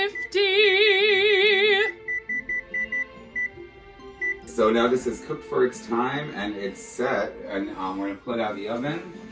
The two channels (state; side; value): identical; both; correlation 1.00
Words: So now this is cooked for its time and it's set, and we're gonna pull it out of the oven